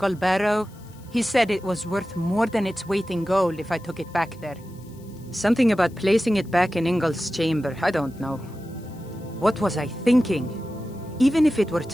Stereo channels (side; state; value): left; noise; hiss, 27 dB below the sound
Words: Barrow. He said it was worth more than its weight in gold if I took it back there. Something about placing it back in Ingol's chamber, I don't know. What was I thinking? Even if it were